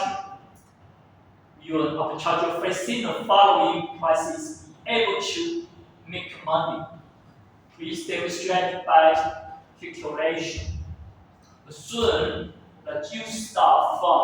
arbitrager facing the following prices be able to make money. Please demonstrate by calculation. Assume that you start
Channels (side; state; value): both; identical; correlation 1.00